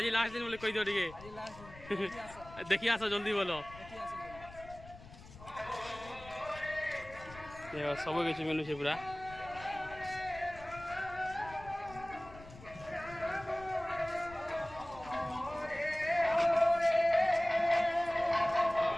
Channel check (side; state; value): left; noise; rumble, 18 dB below the sound